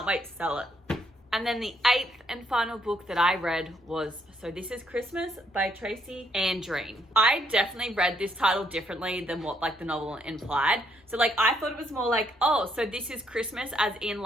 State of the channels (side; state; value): both; normal; correlation 0.72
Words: wait to sell it. And then the 8th and final book that I read was So This Is Christmas by Tracy Andreen. I definitely read this title differently than what like the novel implied. So like I thought it was more like, oh, so this is Christmas as in